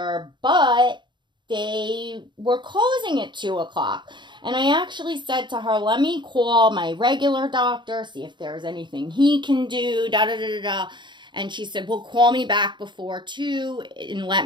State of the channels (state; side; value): late; left; 0.22 ms